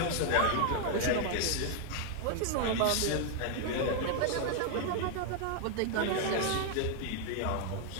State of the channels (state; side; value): different; both; correlation 0.00